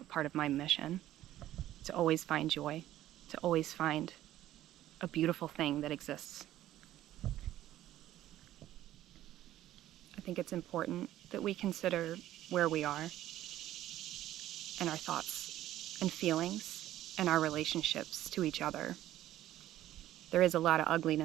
part of my mission, to always find joy, to always find a beautiful thing that exists. I think it's important that we consider where we are and our thoughts and feelings and our relationships to each other. There is a lot of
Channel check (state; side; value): quieter; left; 13.6 dB